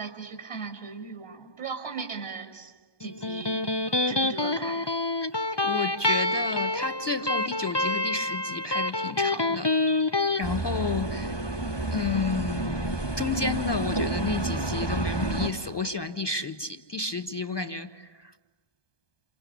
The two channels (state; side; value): late; right; 1.2 ms